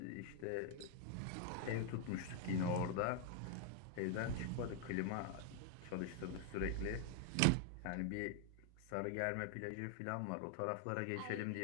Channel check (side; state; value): both; different; correlation 0.00